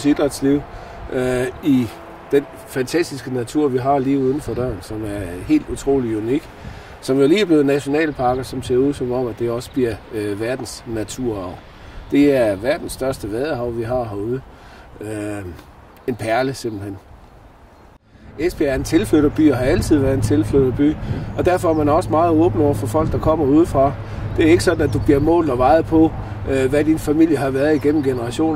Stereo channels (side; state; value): both; identical; correlation 1.00